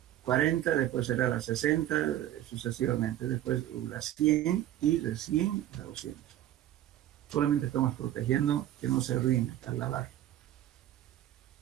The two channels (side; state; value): left; quieter; 12.7 dB